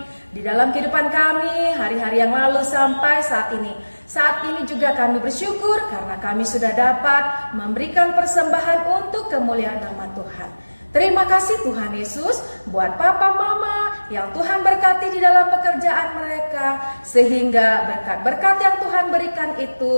di dalam kehidupan kami hari-hari yang lalu sampai saat ini. Saat ini juga kami bersyukur karena kami sudah dapat memberikan persembahan untuk kemuliaan nama Tuhan. Terima kasih Tuhan Yesus buat papa mama yang Tuhan berkati di dalam pekerjaan mereka, sehingga berkat-berkat yang Tuhan berikan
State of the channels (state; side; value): inverted; both; correlation -1.00